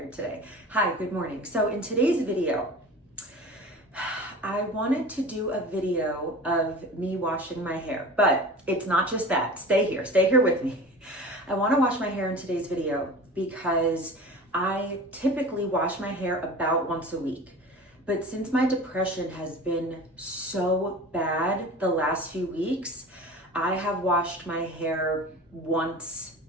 today. Hi, good morning. So in today's video, I wanted to do a video of me washing my hair, but it's not just that. Stay here with me. I want to wash my hair in today's video because I typically wash my hair about once a week. But since my depression has been so bad the last few weeks, I have washed my hair once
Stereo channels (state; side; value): normal; both; correlation 0.37